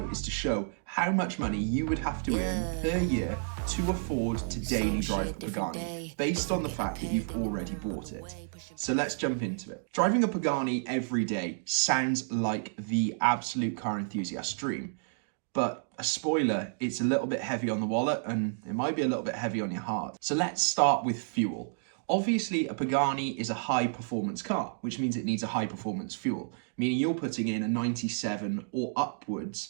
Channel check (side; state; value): left; silent; digital silence